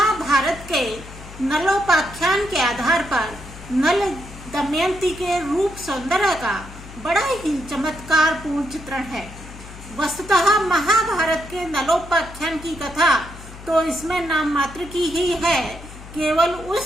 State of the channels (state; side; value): noise; left; hum, 16 dB below the sound